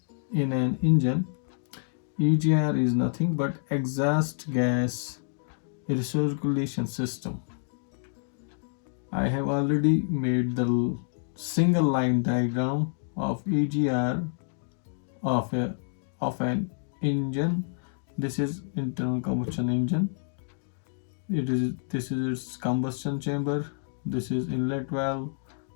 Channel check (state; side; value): silent; right; digital silence